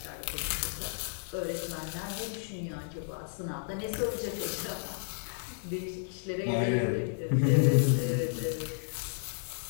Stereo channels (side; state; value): right; silent; digital silence